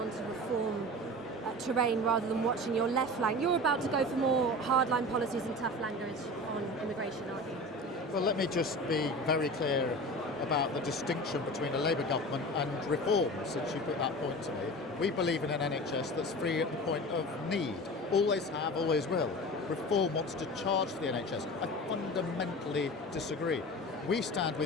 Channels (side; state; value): both; normal; correlation 0.34